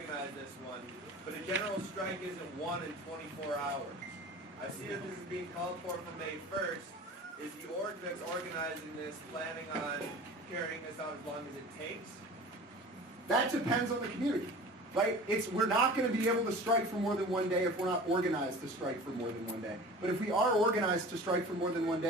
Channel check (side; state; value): both; normal; correlation 0.40